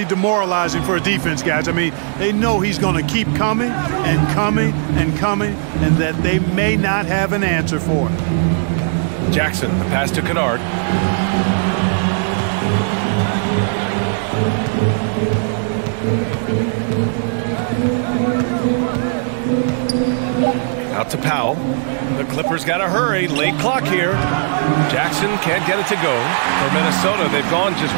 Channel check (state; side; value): silent; left; digital silence